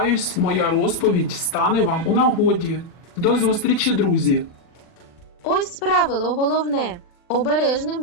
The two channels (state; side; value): late; right; 40 ms